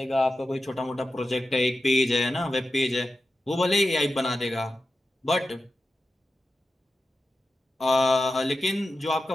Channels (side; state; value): both; normal; correlation 0.92